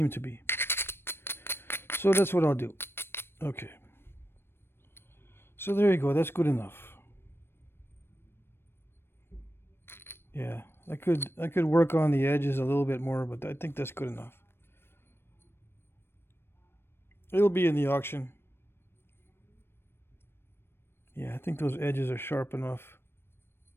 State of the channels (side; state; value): right; late; 0.11 ms